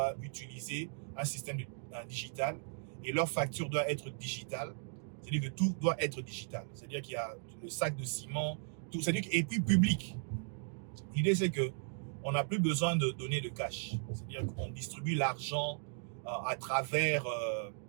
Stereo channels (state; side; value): silent; left; 53 dB below the other